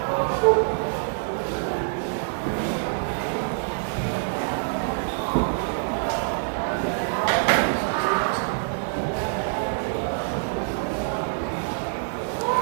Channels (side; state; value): left; silent; digital silence